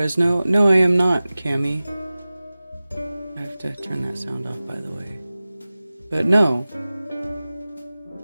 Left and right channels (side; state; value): both; inverted; correlation -0.97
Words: No, I am not, Cammy. I have to turn that sound off, by the way. But no.